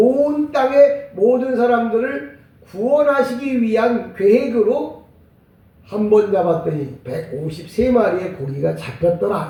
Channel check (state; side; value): identical; both; correlation 1.00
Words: 땅의 모든 사람들을 구원하시기 위한 계획으로 한 번 잡았더니 153마리의 고기가 잡혔더라